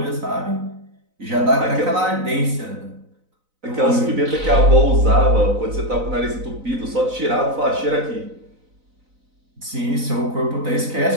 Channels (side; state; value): left; late; 4.0 ms